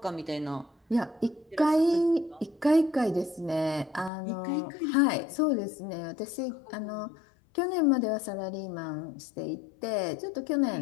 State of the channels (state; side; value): drops out; right; at 4.1 s